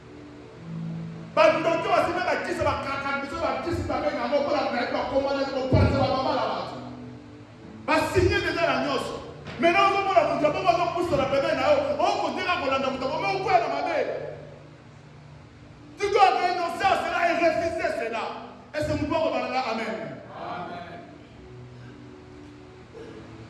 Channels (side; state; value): both; identical; correlation 1.00